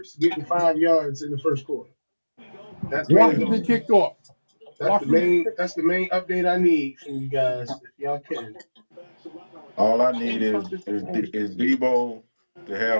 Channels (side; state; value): both; inverted; correlation -1.00